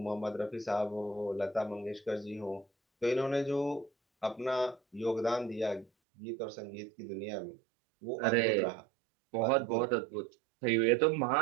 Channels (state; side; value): drops out; left; at 5.9 s